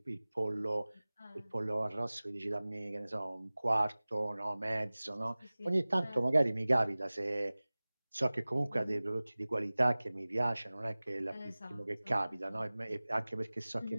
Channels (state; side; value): inverted; both; correlation -0.99